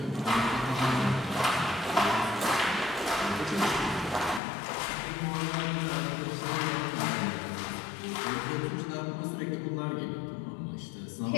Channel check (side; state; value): right; drops out; at 4.4 s